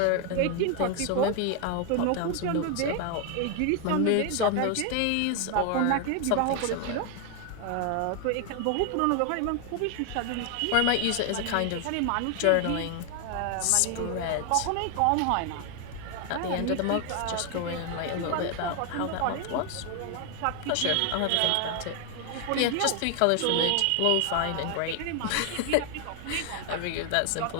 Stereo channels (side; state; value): both; different; correlation 0.01